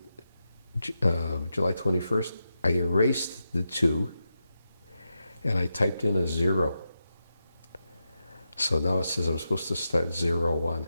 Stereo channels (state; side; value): inverted; both; correlation -0.88